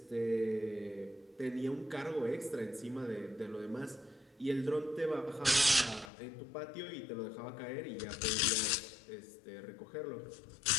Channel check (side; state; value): right; drops out; at 6.1 s